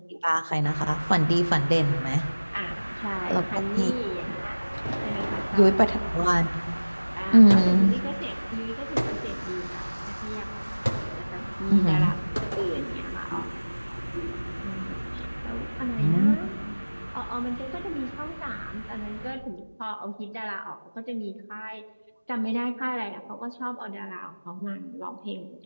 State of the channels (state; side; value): inverted; both; correlation -1.00